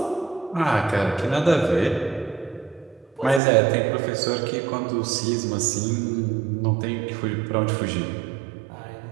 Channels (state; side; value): drops out; left; at 3.4 s